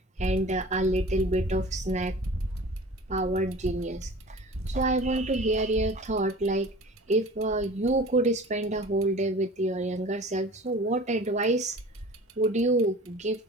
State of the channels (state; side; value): normal; both; correlation 0.41